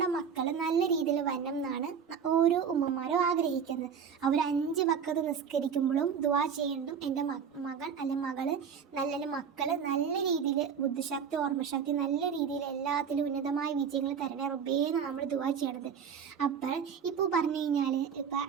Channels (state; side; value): quieter; left; 7.0 dB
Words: മക്കൾ നല്ല രീതിയിൽ വരണം എന്നാണ് ഓരോ ഉമ്മമാരും ആഗ്രഹിക്കുന്നത്. അവർ 5 വഖത്ത് നിസ്കരിക്കുമ്പോഴും ദുആ ചെയ്യുന്നതും എൻ്റെ മകൻ അല്ലെങ്കിൽ മകള് മക്കൾ നല്ല രീതിയിൽ ബുദ്ധിശക്തി ഓർമ്മശക്തി നല്ല രീതിയിൽ എല്ലാത്തിലും ഉന്നതമായ വിജയങ്ങൾ തരണേ റബ്ബേന്ന് നമ്മൾ ദുആ ചെയ്യണത്. അപ്പോൾ ഇപ്പോൾ പറഞ്ഞു കഴിഞ്ഞാൽ ഇപ്പം